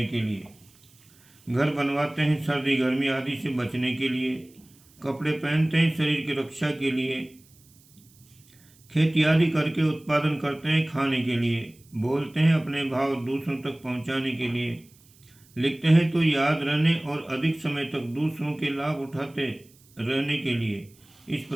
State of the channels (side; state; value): right; noise; hiss, 29 dB below the sound